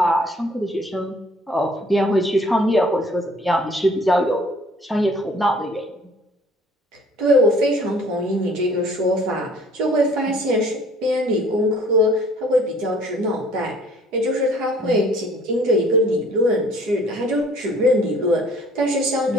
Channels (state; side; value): normal; both; correlation 0.55